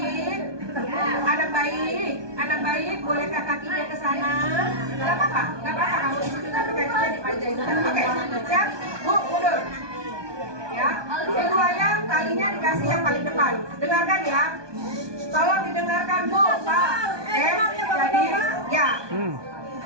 Anak baik, bolehkah kakinya ke sana? Gak apa-apa kamu di situ tapi kakinya dipanjang. Oke, siap, bu mundur. Ya, ibu ayam talinya dikasih yang paling depan. Dengarkan ya. Tolong didengarkan bu, Pak. Jadi, ya.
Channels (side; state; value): left; late; 1.2 ms